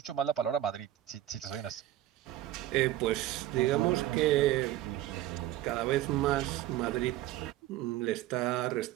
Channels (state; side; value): quieter; left; 13.9 dB